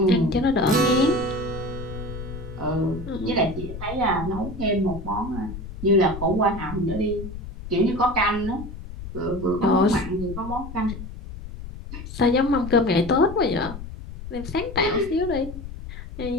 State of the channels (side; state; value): left; noise; rumble, 11 dB below the sound